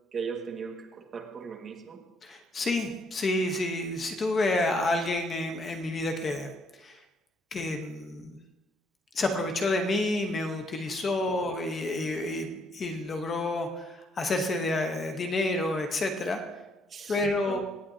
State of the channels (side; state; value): both; normal; correlation 0.70